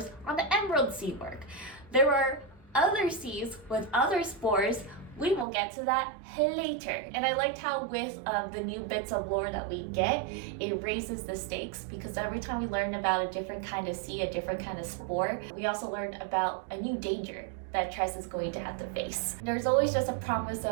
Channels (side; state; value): left; drops out; at 5.5 s